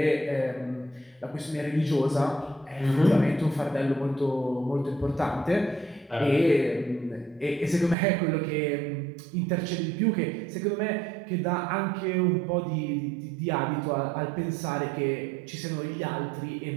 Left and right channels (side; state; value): left; drops out; at 8.0 s